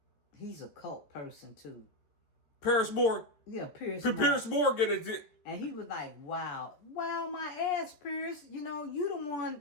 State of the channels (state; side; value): late; right; 13 ms